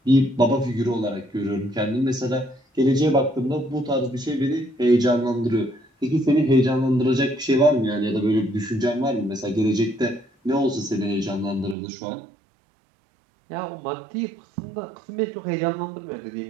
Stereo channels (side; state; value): left; drops out; at 11.8 s